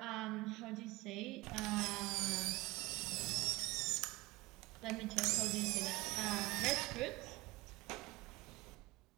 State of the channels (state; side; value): quieter; left; 21.2 dB